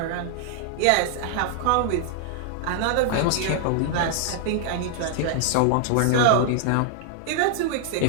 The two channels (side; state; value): both; different; correlation 0.00